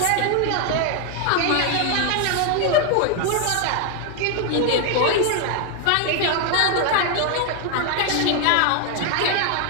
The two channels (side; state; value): both; different; correlation 0.00